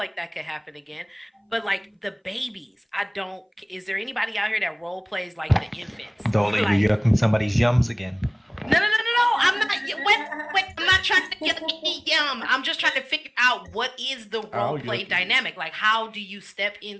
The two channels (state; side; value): identical; both; correlation 1.00